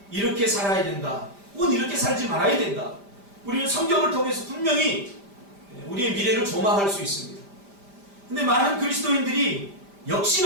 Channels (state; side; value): late; left; 5.0 ms